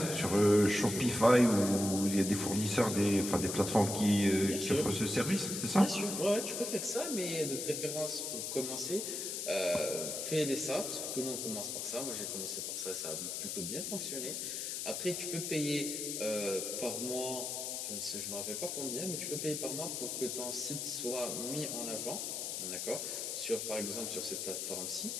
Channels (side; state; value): left; noise; hiss, 3 dB below the sound